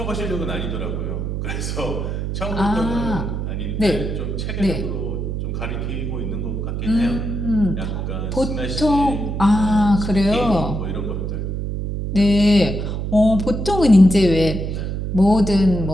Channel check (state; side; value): noise; right; hum, 3 dB below the sound